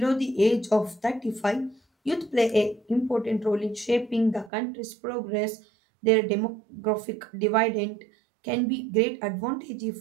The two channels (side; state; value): left; drops out; at 4.5 s